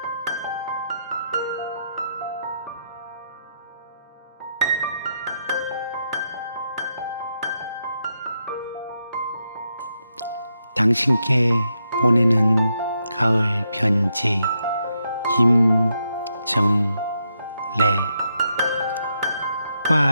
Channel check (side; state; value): both; inverted; correlation -0.82